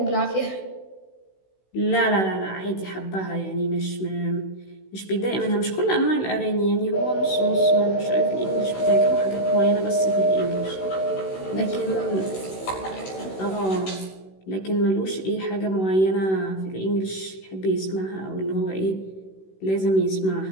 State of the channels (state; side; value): late; right; 16 ms